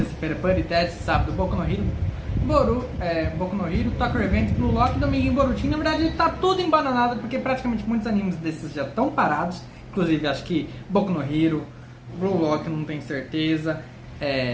Puri Test, sábado Boku no Hero, Boku no Hero, Tokyo Revenge, Blue Lock, domingo em Boruto. Na verdade tá tudo embananado porque praticamente muitos animes desses já estão parados. Inclusive acho que Boku no Hero, Blue Lock não tenho certeza,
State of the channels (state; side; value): identical; both; correlation 1.00